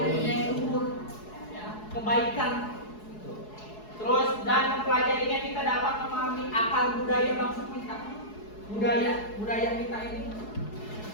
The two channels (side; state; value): right; late; 4.7 ms